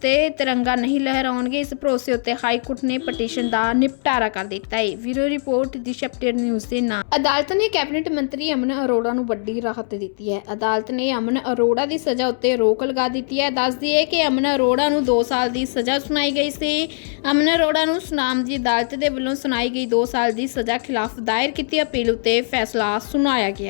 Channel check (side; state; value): right; silent; 65 dB below the other